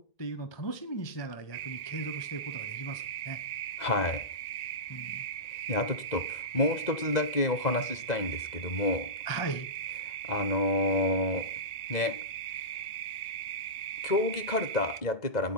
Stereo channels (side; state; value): right; late; 2.0 ms